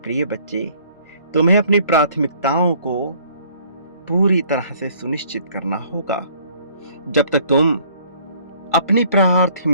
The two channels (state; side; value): inverted; both; correlation -0.59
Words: बच्चे, तुम्हें अपनी प्राथमिकताओं को पूरी तरह से सुनिश्चित करना होगा। जब तक तुम अपनी